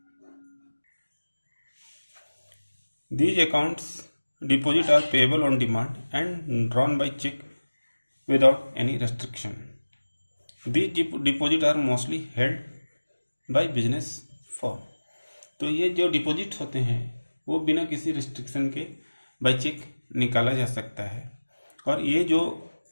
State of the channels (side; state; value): both; inverted; correlation -1.00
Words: These accounts deposit are payable on demand and drawn by check without any restriction. These deposit are mostly held by business firm. तो ये जो deposit होते हैं वो बिना किसी restriction के बाय चेक निकाला जा सकता है, और ये जो